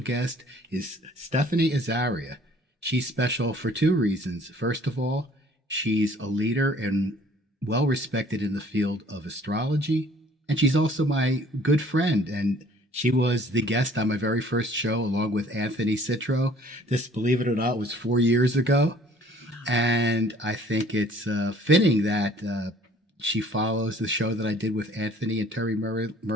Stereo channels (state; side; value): normal; both; correlation 0.55